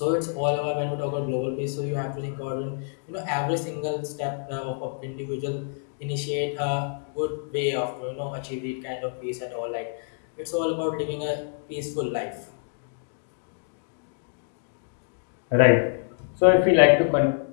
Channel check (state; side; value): silent; right; digital silence